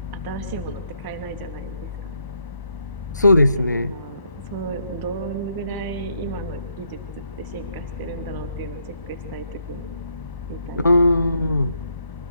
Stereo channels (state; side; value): inverted; both; correlation -0.73